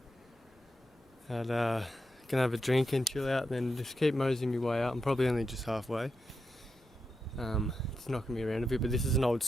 And gonna have a drink and chill out, and then just keep moseying my way up. I'm probably only just halfway. It's knocking me around a bit, but this is an old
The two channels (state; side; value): normal; both; correlation 0.86